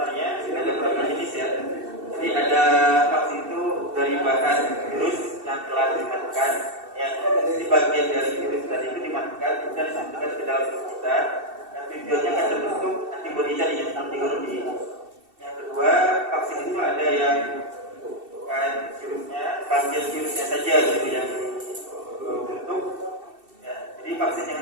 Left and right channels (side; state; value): left; late; 2.7 ms